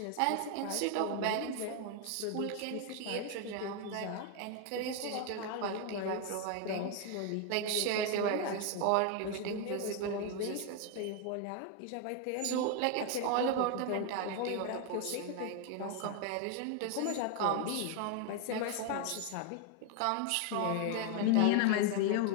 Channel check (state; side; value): different; both; correlation 0.01